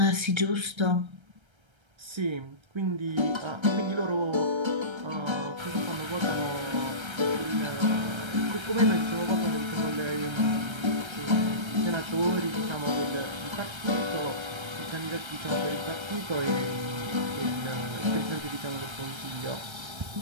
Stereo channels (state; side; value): late; left; 1.3 ms